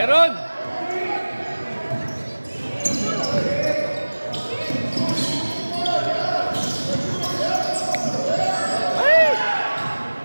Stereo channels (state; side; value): inverted; both; correlation -1.00